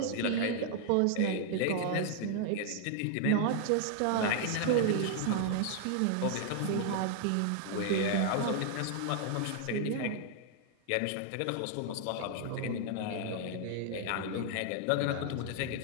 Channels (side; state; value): both; different; correlation 0.00